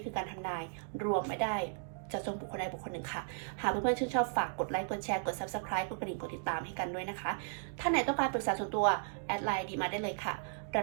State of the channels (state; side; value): silent; left; digital silence